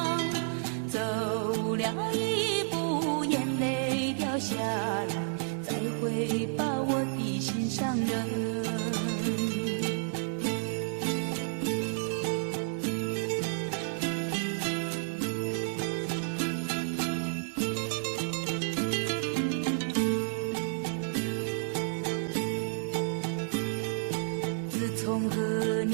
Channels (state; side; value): silent; left; 57 dB below the other